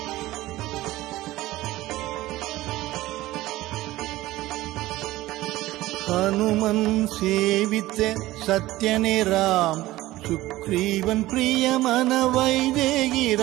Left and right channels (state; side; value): quieter; left; 17.0 dB